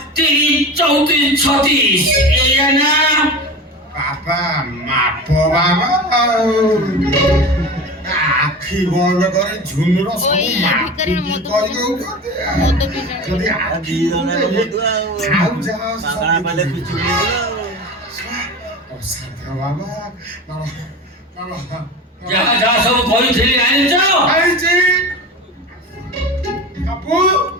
30, 34, 36, এই না? বাবা মাপ বাবা আখি বন্ধ করে ঝুনুর ওই সব মাপি ভিকারির মতো কই দউছতে যদি আখি খাও যাও পাগড়া পালে কুচুরি ও সাথে বাবা বাবা বাবা যা যা সব কইছিলি আনিছ? আইছি কাপু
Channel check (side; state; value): both; normal; correlation 0.31